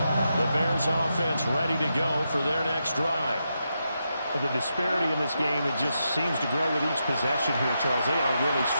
The Bears offense ready to go for their next drive. The disparity in this game, it just seems to grow with each possession here, Charles. They are really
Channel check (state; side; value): inverted; both; correlation -0.85